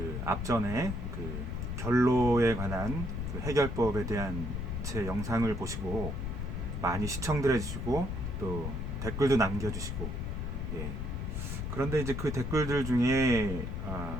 앞전에 그 결로에 관한 그 해결법에 대한 제 영상을 보시고 많이 시청들 해주시고 또 댓글도 남겨주시고, 예. 그런데 이제 그 댓글들 중에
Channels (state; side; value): noise; left; rumble, 3 dB below the sound